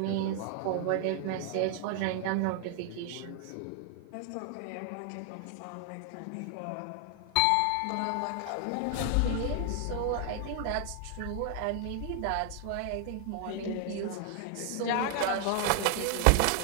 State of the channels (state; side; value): different; both; correlation 0.00